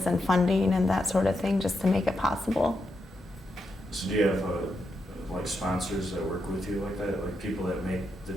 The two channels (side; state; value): both; normal; correlation 0.84